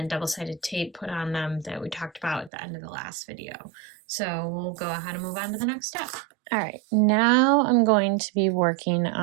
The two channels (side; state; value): left; drops out; at 2.5 s